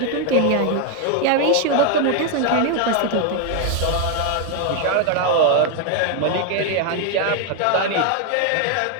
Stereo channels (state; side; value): different; both; correlation 0.01